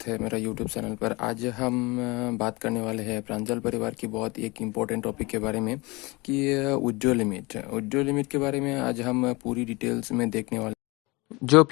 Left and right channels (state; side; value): quieter; right; 24.8 dB